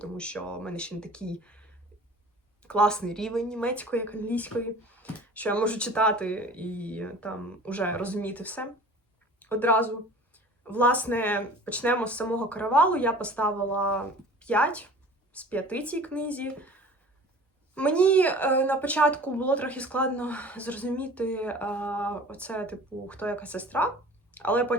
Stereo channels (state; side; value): normal; both; correlation 0.44